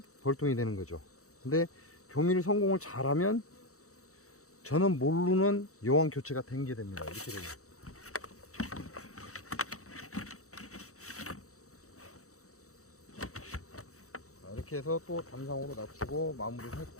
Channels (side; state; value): right; late; 0.65 ms